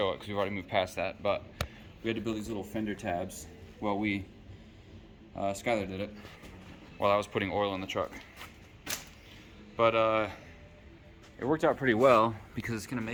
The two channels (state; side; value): identical; both; correlation 1.00